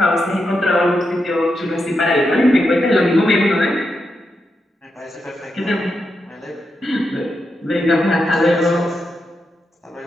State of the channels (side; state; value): both; normal; correlation 0.85